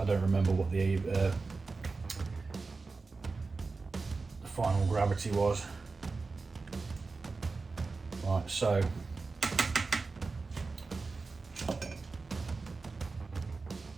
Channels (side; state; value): left; quieter; 4.1 dB